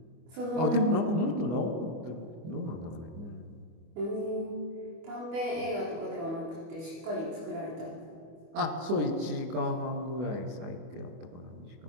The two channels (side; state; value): left; late; 25 ms